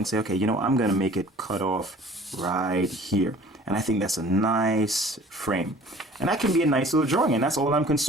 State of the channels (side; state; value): both; normal; correlation 0.49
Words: say, okay, you know, I'm going to make it cut off right here. And I think that's a nice frame. And that can be a nice little drawing, and that's all I'm